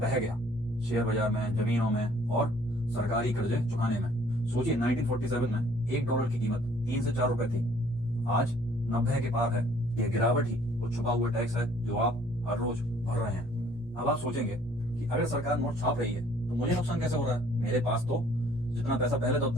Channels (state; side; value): noise; right; hum, 23 dB below the sound